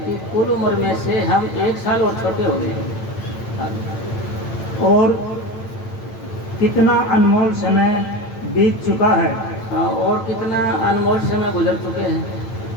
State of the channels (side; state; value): right; late; 8.9 ms